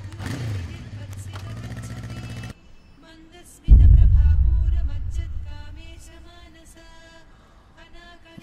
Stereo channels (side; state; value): both; identical; correlation 1.00